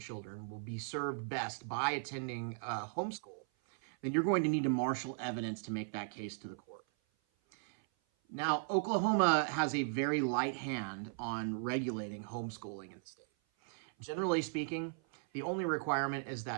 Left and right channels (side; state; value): left; silent; 53 dB below the other